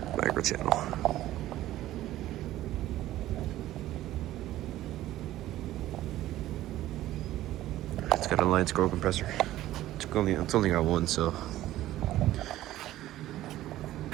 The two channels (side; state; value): left; quieter; 14.6 dB